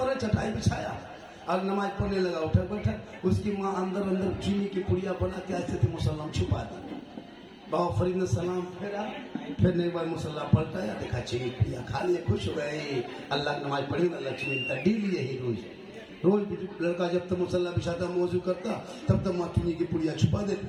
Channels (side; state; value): both; identical; correlation 1.00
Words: है, चटाई बिछाया और नमाज पढ़ने लगा, उठा बैठा। उसकी माँ अंदर अंदर चीनी की पुड़िया बना के ऐसे थे मुसल्ला छुपा दी। बाबा फरीद ने सलाम फेरा, फिर एक बार मुसल्ला पलटाया, देखा चीनी पुड़िया खा लिए, खुश हो गए। अल्लाह की नमाज पढ़ी ना, लक्ष्मी का डेली यही रोज लड़का जब तक मुसल्ला बिछाता मौजू करता तब तक माँ चीनी की पुड़िया छुपा